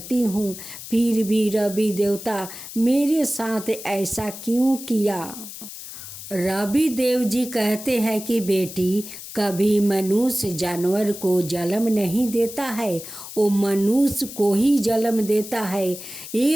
हूँ, फिर भी रवि देवता मेरे साथ ऐसा क्यों किया? रवि देव जी कहते हैं कि बेटी, कभी मनुष्य जानवर को जन्म नहीं देता है, वो मनुष्य को ही जन्म देता है।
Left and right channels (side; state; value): left; noise; hiss, 12 dB below the sound